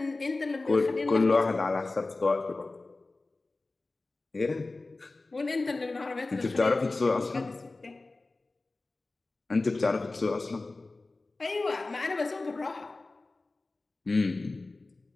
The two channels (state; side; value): quieter; right; 3.3 dB